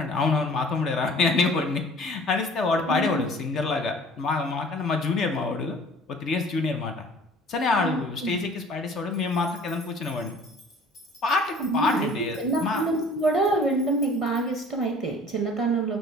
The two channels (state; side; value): normal; both; correlation 0.49